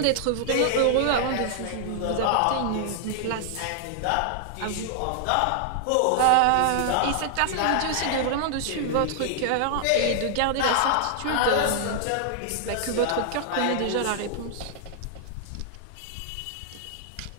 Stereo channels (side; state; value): both; different; correlation -0.01